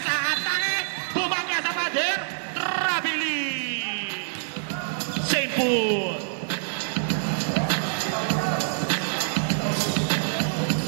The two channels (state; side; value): silent; left; digital silence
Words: Bumangga sa pader. Rabili. St. Paul.